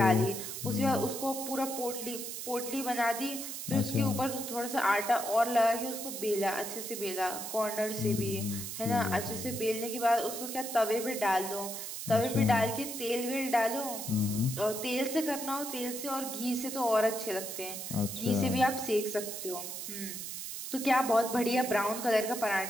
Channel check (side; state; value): right; noise; hiss, 7 dB below the sound